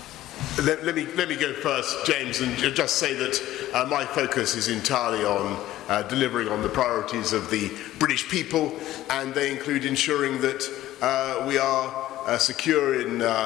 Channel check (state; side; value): quieter; right; 14.5 dB